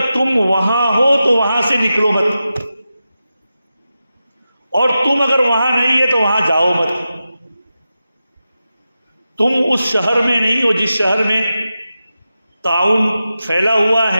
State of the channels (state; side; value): inverted; both; correlation -0.92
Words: تم وہاں ہو تو وہاں سے نکلو مت، اور تم اگر وہاں نہیں ہے تو وہاں جاؤ مت۔ تم اس شہر میں نہیں ہو جس شہر میں تعاون پھیلا ہوا